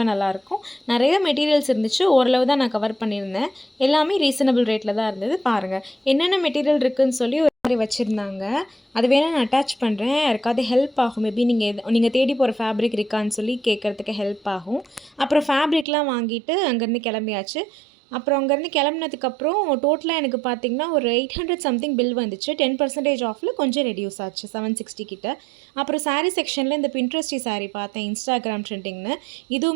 நல்லாயிருக்கும். நிறைய மெட்டீரியல்ஸ் இருந்துச்சு. ஓரளவு தான் நான் கவர் பண்ணியிருந்தேன். எல்லாமே ரீசனபிள் ரேட்டில் தான் இருந்தது. பாருங்கள் என்னென்ன மெட்டீரியல் இருக்குதுன்னு சொல்லி ஒரு மாதிரி வச்சுருந்தாங்க. அது வேணால் நான் அட்டாச் பண்ணுறேன். யாருக்காவது ஹெல்ப் ஆகும். மேபி நீங்கள் தேடி போகிற ஃபேப்ரிக் இருக்கான்னு சொல்லி கேட்குறதுக்கு ஹெல்ப் ஆகும். அப்புறம் ஃபேப்ரிக்லாம் வாங்கிட்டு அங்கேருந்து கிளம்பியாச்சு. அப்புறம் அங்கேருந்து கிளம்புனதுக்கப்புறம் டோட்டலாக எனக்கு பார்த்திங்கன்னா ஒரு 800 சம்திங் பில் வந்துச்சு. 10% ஆஃபில் கொஞ்சம் ரெடியூஸ் ஆச்சு, 760 கிட்ட. அப்புறம் சாரீ செக்ஷனில் இந்த பின்ட்ரெஸ்டி சாரீ பார்த்தேன், இன்ஸ்டாகிராம் ட்ரெண்டிங்னு.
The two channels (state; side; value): drops out; left; at 15.9 s